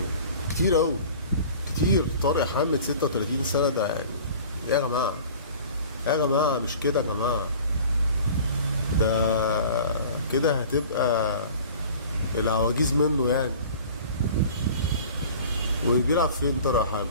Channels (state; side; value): inverted; both; correlation -0.44